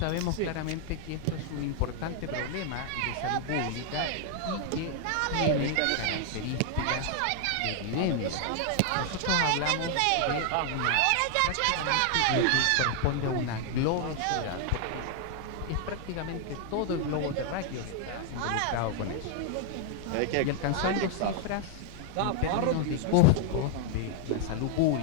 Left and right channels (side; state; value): both; different; correlation 0.00